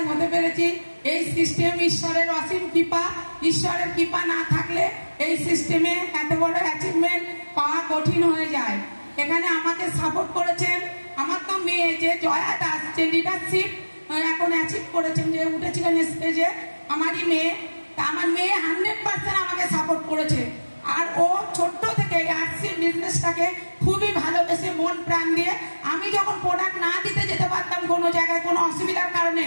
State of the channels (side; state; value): both; inverted; correlation -1.00